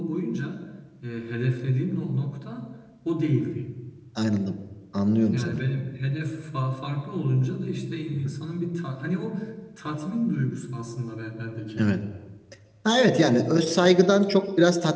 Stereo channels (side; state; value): both; identical; correlation 1.00